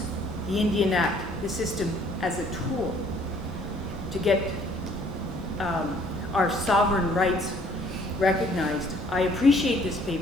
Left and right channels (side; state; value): both; normal; correlation 0.60